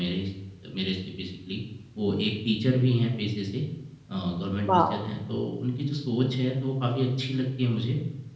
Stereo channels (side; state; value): both; identical; correlation 1.00